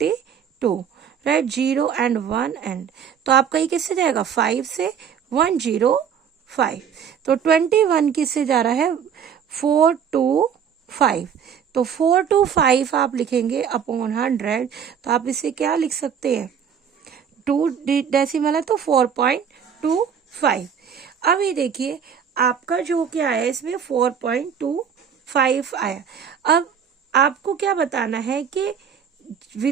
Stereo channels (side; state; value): left; quieter; 7.6 dB